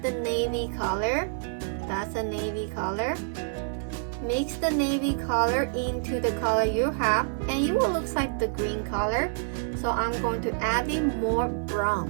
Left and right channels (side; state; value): left; silent; digital silence